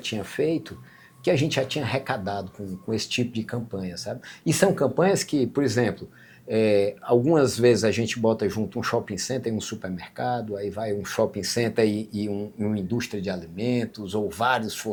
feito, que a gente já tinha arrecadado com esse tipo de campanha, sabe? E são campanhas que, por exemplo, algumas vezes a gente bota junto um shopping center e um supermercado, aí vai um shopping center e uma indústria de alimentos, ou vários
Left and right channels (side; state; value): both; identical; correlation 1.00